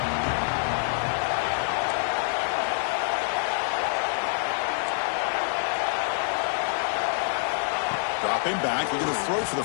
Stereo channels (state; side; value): silent; right; digital silence